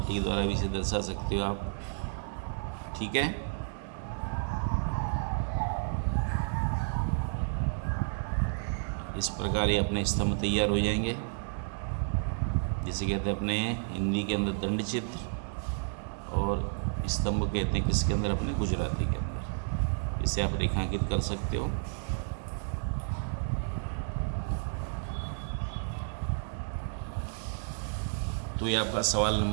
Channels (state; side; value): silent; left; digital silence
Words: के द्वारा भी इसे दर्शा सकते हो आप। ठीक है। इस प्रकार ये अपने स्तंभ तैयार हो जाएंगे, जिसे कहते हैं अपने हिंदी के अंदर दंड चित्र और स्तंभ कहते हैं किसके अंदर, अपने गुजराती के अंदर। इसे आप रेखांकित कर सकते हो। तो ये आपका सवाल